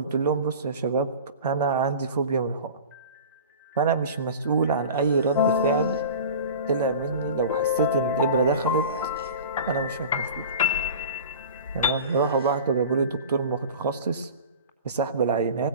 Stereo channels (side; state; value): both; inverted; correlation -0.36